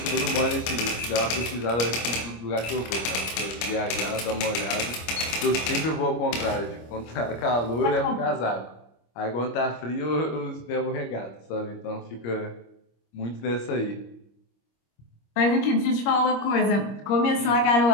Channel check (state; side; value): late; right; 25 ms